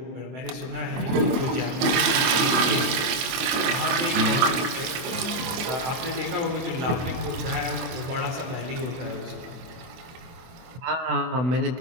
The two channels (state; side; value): late; left; 24 ms